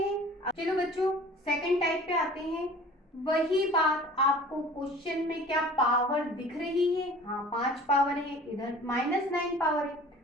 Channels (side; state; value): both; normal; correlation 0.45